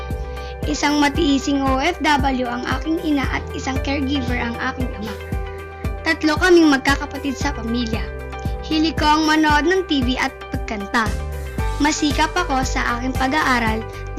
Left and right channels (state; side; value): identical; both; correlation 1.00